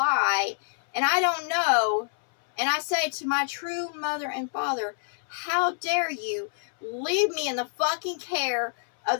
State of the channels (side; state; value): right; silent; 60 dB below the other